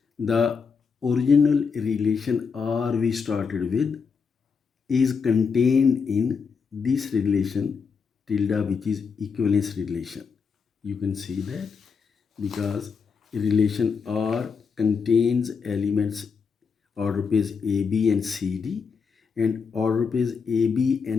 the original relation R we started with is contained in this relation tilde, which is equivalence relation. You can see that because relation R contains elements order pairs AB and CD, and order pairs AB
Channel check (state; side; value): quieter; right; 5.7 dB